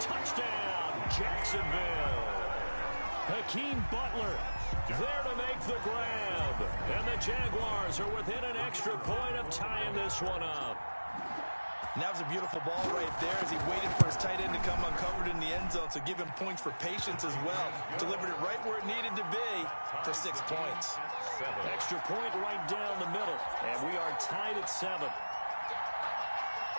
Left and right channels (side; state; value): both; inverted; correlation -1.00